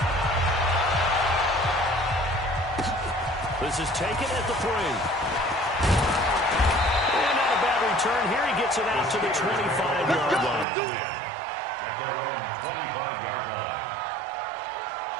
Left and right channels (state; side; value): drops out; left; at 10.7 s